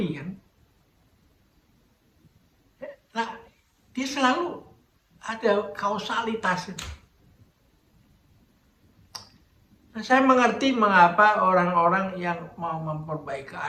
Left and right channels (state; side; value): identical; both; correlation 1.00